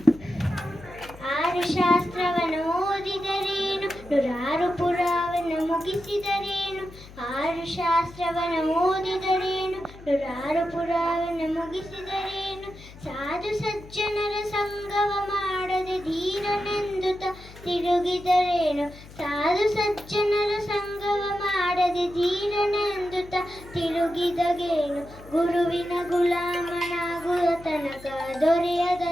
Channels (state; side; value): noise; left; hum, 18 dB below the sound